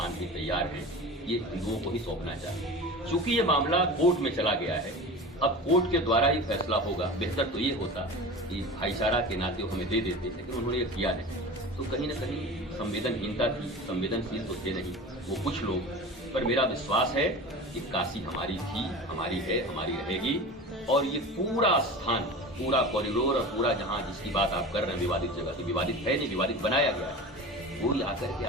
भी तैयार हैं ये हिंदुओं को ही सौंपना चाहिए। चूंकि ये मामला कोर्ट में चला गया है, अब कोर्ट के द्वारा ही फैसला होगा। बेहतर तो ये होता कि भाईचारा के नाते हमें दे देते, लेकिन उन्होंने ये किया नहीं। तो कहीं न कहीं संवेदनहीनता थी, संवेदनशील तो थे नहीं वो कुछ लोग। पर मेरा विश्वास है कि काशी हमारी थी, हमारी है, हमारी रहेगी। और ये पूरा स्थान, पूरा कॉरिडोर और पूरा जहाँ जिसकी बात आप कर रहे हैं विवादित जगह की, विवादित है नहीं, विवादित बनाया गया है, वो आकर के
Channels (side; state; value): both; normal; correlation 0.33